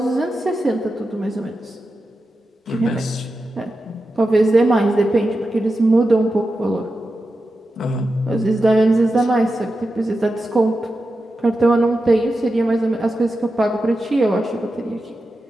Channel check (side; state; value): both; normal; correlation 0.91